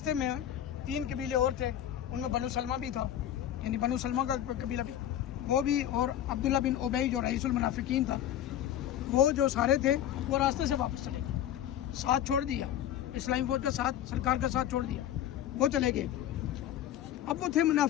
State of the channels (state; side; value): quieter; right; 11.2 dB